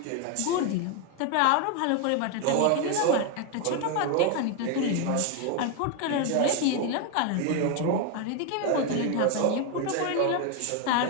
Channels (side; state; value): both; different; correlation 0.01